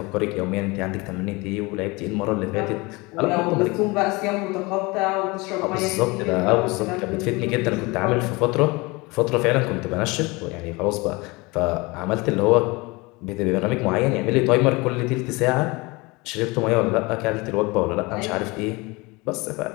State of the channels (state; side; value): quieter; right; 24.8 dB